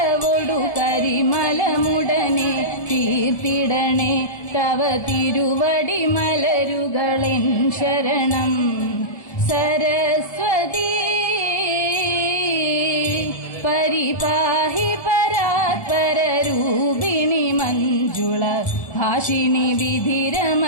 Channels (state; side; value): late; right; 1.3 ms